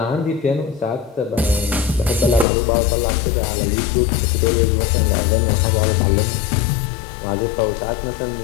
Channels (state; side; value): drops out; right; at 2.5 s